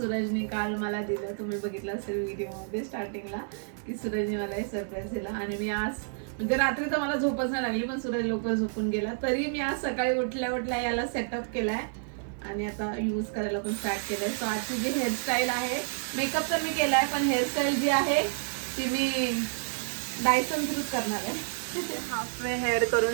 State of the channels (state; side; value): silent; left; 58 dB below the other